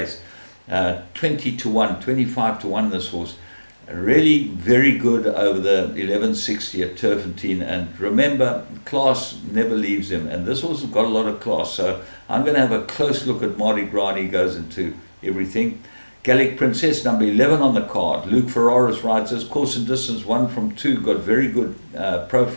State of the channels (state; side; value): inverted; both; correlation -1.00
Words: 20-1, 25-1 this horse. Really very good over the 1160 at Turffontein. And remember, class never leaves him. And this horse has got a lot of class. So I'm going to have a close look at Mardi Gras, and he goes into everything. Gallic Princess, number 11 on the card. Luke Ferraris rides this. Course and distance 1 from 2. Got very good